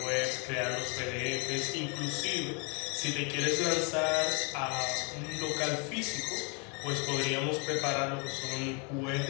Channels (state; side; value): quieter; right; 34.4 dB